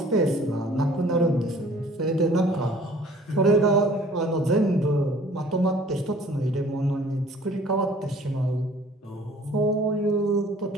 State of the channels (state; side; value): normal; both; correlation 0.52